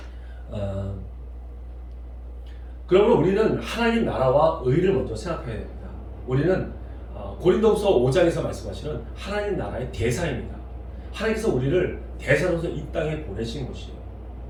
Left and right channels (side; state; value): both; identical; correlation 1.00